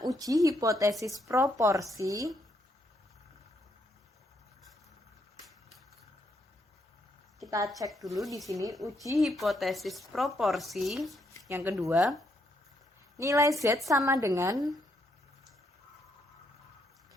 uji hipotesis proporsi. Kita cek dulu di sini uji hipotesis proporsi. Yang kedua, nilai Z sama dengan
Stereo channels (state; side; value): normal; both; correlation 0.75